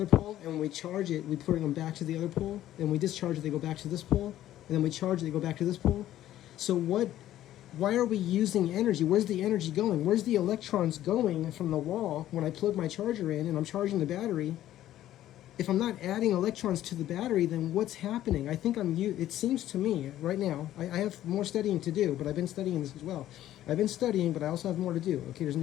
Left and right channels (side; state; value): right; quieter; 13.0 dB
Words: pole, and when we charge it, we bring them back to the other pole, and we discharge it, they go back to this pole, and then we charge it, they go back to this pole? So why are we using energy? Where's the energy going? Where's the electrons going from the wall when I plug my charger in and I'm charging the battery? If I'm not adding electrons to the battery, then what's happening? I think it seems to me right now, I have more studying to do, but I've been studying this as well. I've been studying, but I also have more to do. Okay, there's